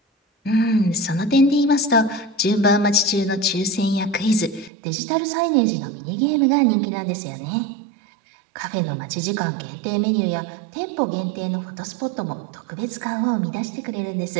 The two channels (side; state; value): left; drops out; at 4.7 s